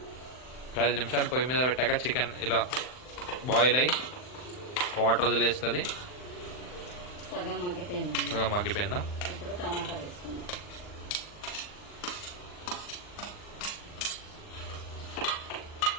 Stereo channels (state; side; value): late; right; 39 ms